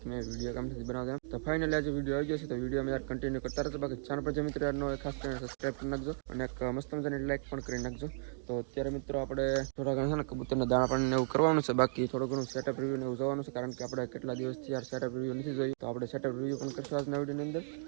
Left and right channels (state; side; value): silent; left; digital silence